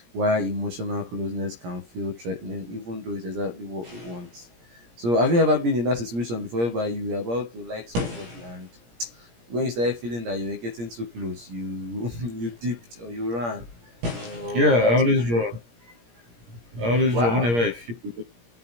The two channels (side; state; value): left; late; 17 ms